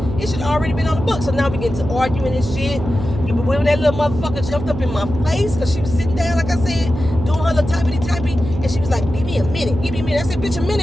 it should have already been on the book. So now we get to arguing and shit. But when that little motherfucker jumped up in my face, because she was sitting down, like I said, doing her little typey, and she was like, give me a minute. I said, bitch, a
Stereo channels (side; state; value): right; noise; hum, 8 dB below the sound